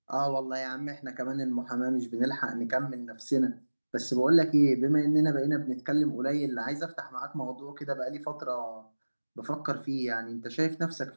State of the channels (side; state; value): both; inverted; correlation -1.00